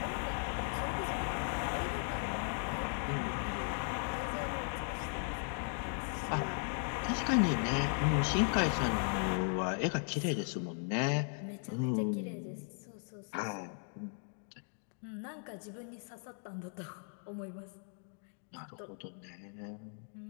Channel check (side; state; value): right; silent; 53 dB below the other